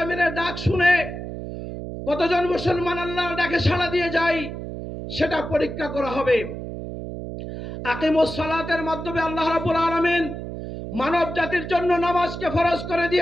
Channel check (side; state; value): right; noise; hum, 8 dB below the sound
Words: ডাক শুনে কতজন মুসলমান আল্লাহর ডাকে সাড়া দিয়ে যায় সেটা পরীক্ষা করা হবে। আকিমুস সালাতের মাধ্যমে আল্লাহ রাব্বুল আলামিন মানব জাতির জন্য নামাজকে ফরজ করে